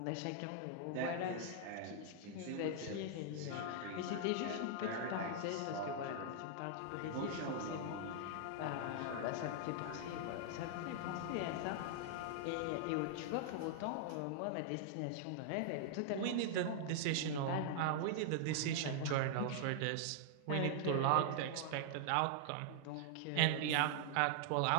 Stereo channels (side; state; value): both; different; correlation -0.01